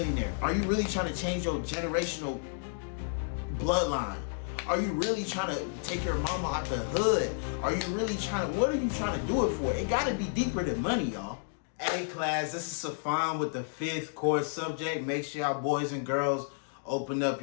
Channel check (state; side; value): silent; right; digital silence